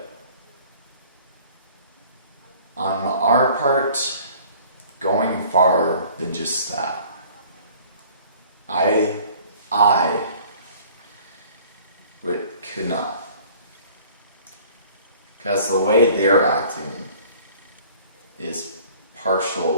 on our part, going far than just that. I could not. Because the way they're acting is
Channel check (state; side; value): inverted; both; correlation -0.51